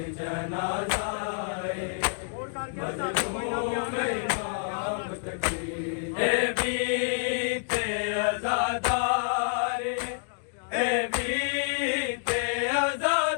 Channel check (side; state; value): right; silent; digital silence